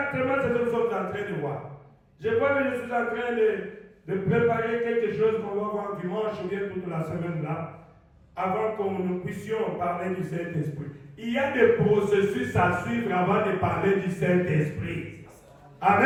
ce que nous sommes en train de voir. Je vois que je suis en train de préparer quelque chose qu'on va voir dimanche ou bien toute la semaine là, avant que nous puissions parler du Saint-Esprit. Il y a des processus à suivre avant de parler du Saint-Esprit.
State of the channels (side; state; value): both; identical; correlation 1.00